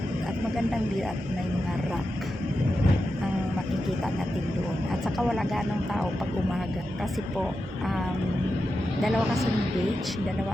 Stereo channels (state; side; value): normal; both; correlation 0.89